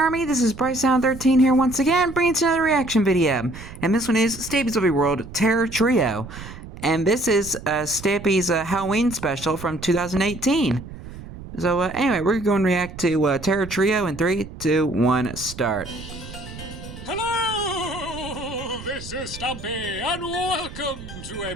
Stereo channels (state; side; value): noise; right; rumble, 14 dB below the sound